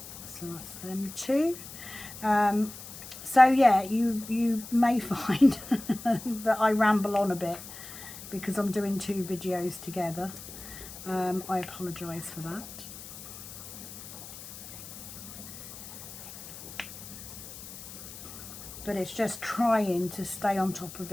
So that's them two. So yeah, you may find that I ramble on a bit because I'm doing two videos together. I apologise for that. But it's just trying to stay on top of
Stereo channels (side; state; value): left; noise; hiss, 13 dB below the sound